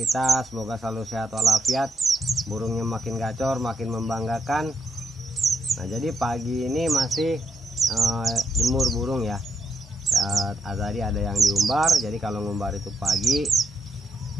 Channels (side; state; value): both; normal; correlation 0.79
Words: semoga selalu sehat walafiat, burungnya makin gacor, makin membanggakan. Nah, jadi pagi ini masih jemur burung ya. Tadi ada yang diumbar, jadi kalau ngumbar itu pagi.